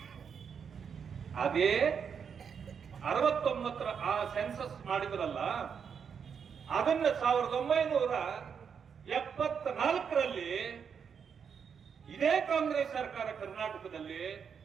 ಅದೇ 69ರ ಆ ಸೆನ್ಸಸ್ ಮಾಡಿದ್ರಲ್ಲ, ಅದನ್ನ 1974ರಲ್ಲಿ ಇದೇ ಕಾಂಗ್ರೆಸ್ ಸರ್ಕಾರ ಕರ್ನಾಟಕದಲ್ಲಿ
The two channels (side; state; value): left; quieter; 6.9 dB